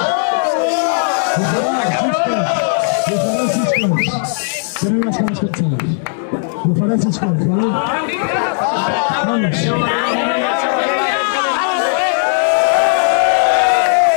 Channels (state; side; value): silent; right; digital silence